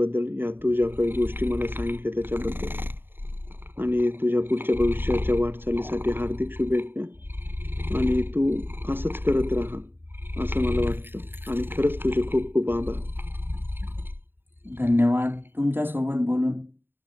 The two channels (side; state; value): left; late; 0.099 ms